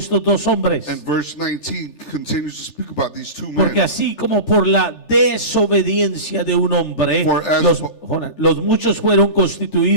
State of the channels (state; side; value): late; right; 3.4 ms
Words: dos hombres. And verse 19 continues to speak about these two Porque men. así como por la desobediencia de un hombre, For as- los muchos fueron